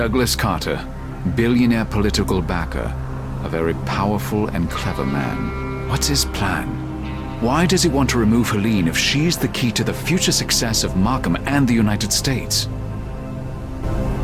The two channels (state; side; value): identical; both; correlation 1.00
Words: Carter, billionaire political backer, a very powerful and clever man. What's his plan? Why does he want to remove Helene if she's the key to the future success of Markham and the United States?